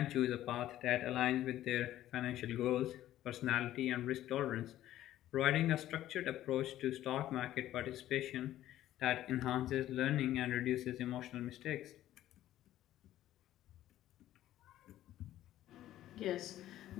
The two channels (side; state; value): right; quieter; 13.4 dB